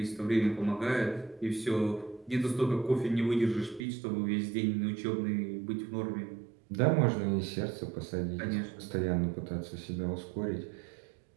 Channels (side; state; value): left; drops out; at 3.9 s